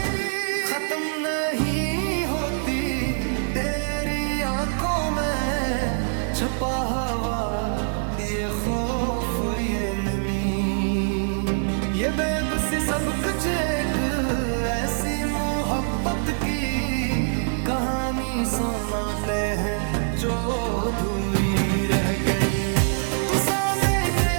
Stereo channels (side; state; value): left; silent; 62 dB below the other